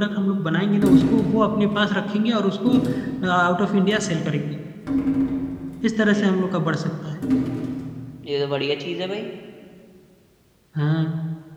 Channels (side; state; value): both; identical; correlation 1.00